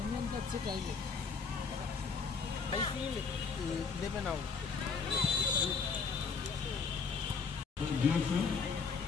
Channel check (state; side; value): quieter; right; 5.3 dB